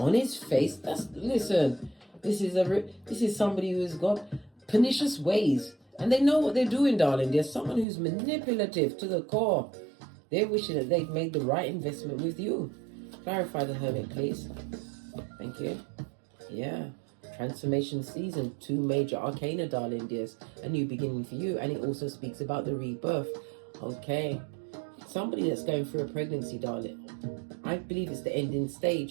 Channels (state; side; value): drops out; left; at 7.9 s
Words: his face. Listen. This is somebody who has got pernicious ways, and they know what they're doing, darling. There's someone who's manipulative to the core. They're wishing that they've made the right investment with you. Clarify the Hermit, please. Thank you. Yeah. Transformation season. 2 major arcana, darling dears. A new beginning for you, and it also speaks about the rebirth. Okay. Somebody that's going through a pregnancy, darling. I believe it's the ending